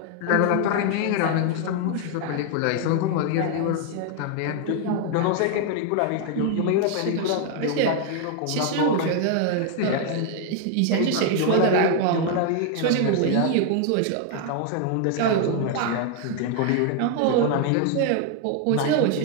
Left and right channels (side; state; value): both; different; correlation 0.00